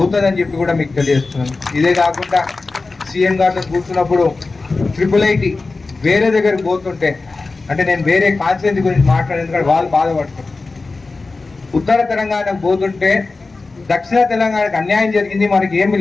చెప్పి కూడా మీకు తెలియజేస్తున్నాను. ఇదే కాకుండా సీఎం గారితో కూర్చున్నప్పుడు IIIT వేరే దగ్గరికి పోతుంటే, అంటే నేను వేరే కాన్స్టిట్యూన్సీ గురించి మాట్లాడేందుకంటే వాళ్ళు బాధపడుతున్నారు. ఉత్తర తెలంగాణకు పోతుంటే దక్షిణ తెలంగాణకు అన్యాయం జరిగింది, మనకి ఏమి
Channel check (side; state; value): right; quieter; 3.7 dB